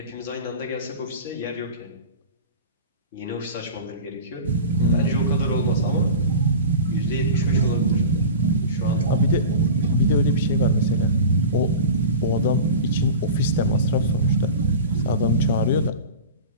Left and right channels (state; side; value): inverted; both; correlation -0.33